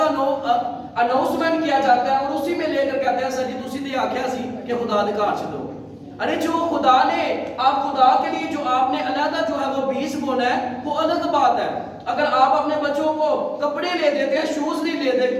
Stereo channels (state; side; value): identical; both; correlation 1.00